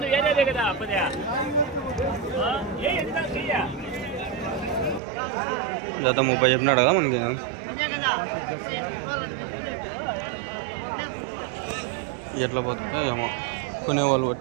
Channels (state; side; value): drops out; left; at 5.0 s